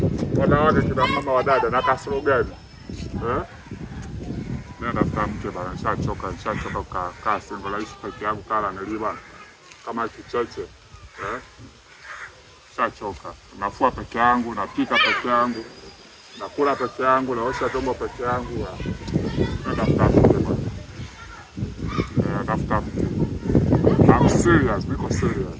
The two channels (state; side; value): identical; both; correlation 1.00